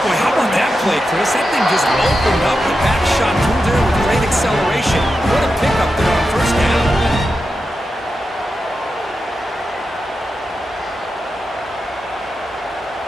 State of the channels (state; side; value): normal; both; correlation 0.89